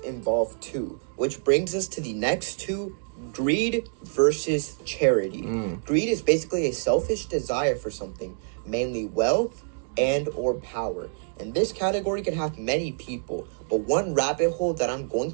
too, which brings us to the next two, greed versus charity. Greed is basically a selfish desire for something, mainly wealth and or power. And this category can have many people, but one rabbit hole that I'm going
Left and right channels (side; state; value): left; silent; digital silence